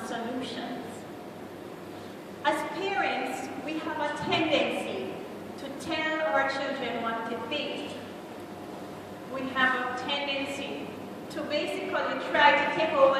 solutions. As parents, we have a tendency to tell our children what to think. We have a tendency to basically try to take over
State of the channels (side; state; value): both; identical; correlation 1.00